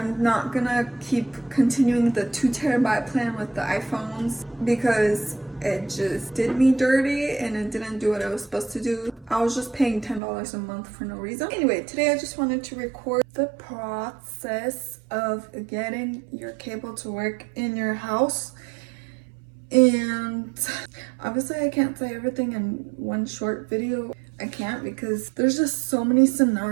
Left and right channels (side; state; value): left; drops out; at 10.2 s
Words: not gonna keep continuing the 2 TB plan with the iPhones because it just did me dirty and it didn't do what I was supposed to do. I was just paying $10 a month for no reason. Anyway, today I just wanted to record the process of getting your cable to work in your house. And obviously I can't say everything in one short video. I can't because there's just so many